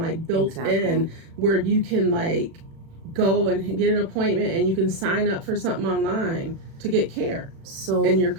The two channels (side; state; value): left; late; 36 ms